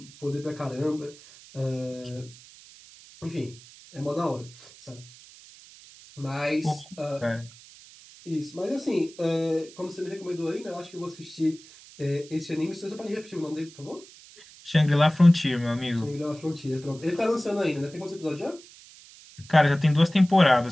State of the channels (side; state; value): right; noise; hiss, 21 dB below the sound